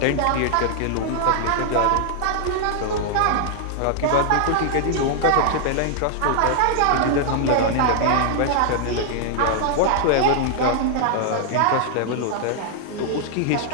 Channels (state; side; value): different; both; correlation 0.00